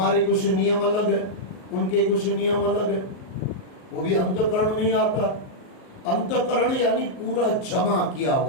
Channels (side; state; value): right; late; 38 ms